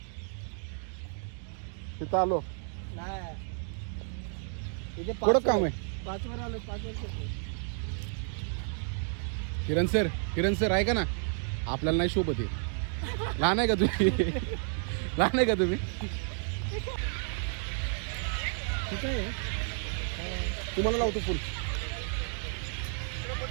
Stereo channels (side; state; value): left; silent; 57 dB below the other